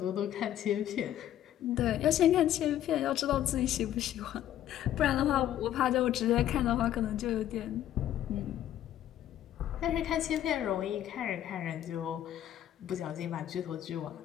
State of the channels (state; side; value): quieter; right; 11.8 dB